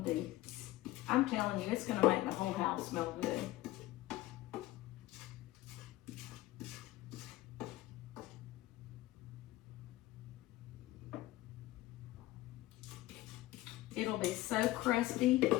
be, I'm telling you, it's gonna make the whole house smell good. It'll be so crusty,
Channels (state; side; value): quieter; right; 17.0 dB